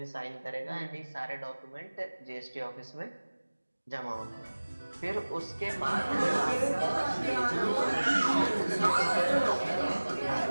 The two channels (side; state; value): both; inverted; correlation -1.00